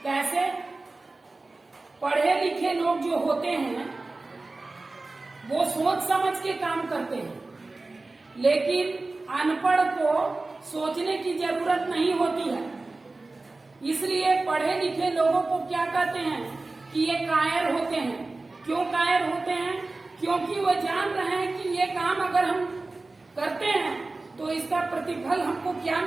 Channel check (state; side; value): quieter; left; 3.3 dB